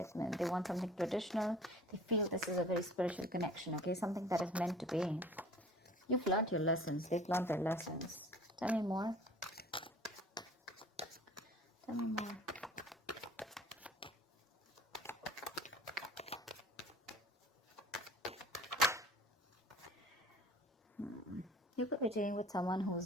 They want something traditional. They feel this is a very spiritual connection, okay? Something that is meant to be. You've learned your lessons. They've learned their lessons. Tell me more. Tell me more. You could be dealing with someone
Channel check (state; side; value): normal; both; correlation 0.46